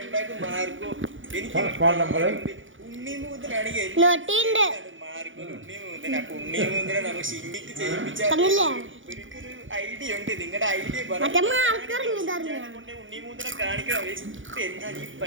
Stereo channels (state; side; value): late; left; 0.57 ms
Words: ഫോൺ നമ്പർ ഐഡിയ ഉണ്ട്. നിങ്ങളുടെ ഐഡിയ